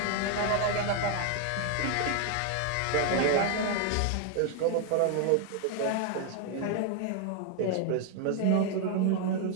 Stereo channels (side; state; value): both; different; correlation 0.00